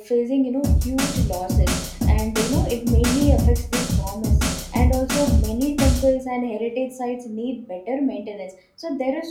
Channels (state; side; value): identical; both; correlation 1.00